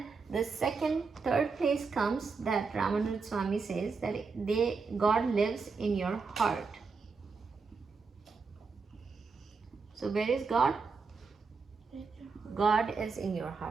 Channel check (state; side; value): quieter; left; 4.8 dB